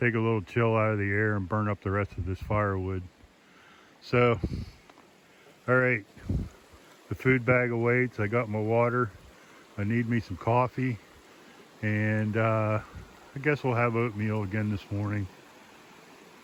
a little chill out of the air and burn up the rest of this firewood. So, all right, the food bag awaits. I got my water. I need me some coffee, and I guess we'll have oatmeal again this morning.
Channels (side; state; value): both; identical; correlation 1.00